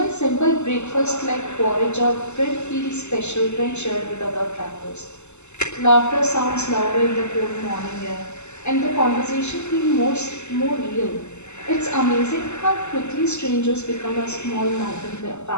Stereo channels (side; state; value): right; late; 0.83 ms